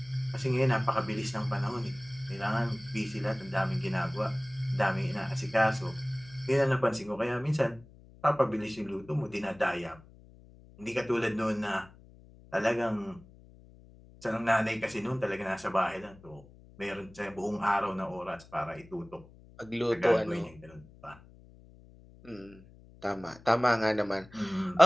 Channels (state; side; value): noise; left; hum, 23 dB below the sound